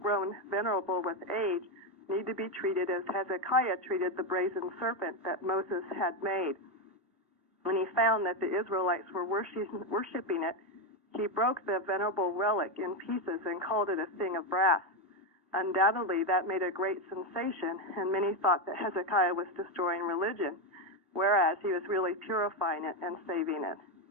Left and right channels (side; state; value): both; normal; correlation 0.09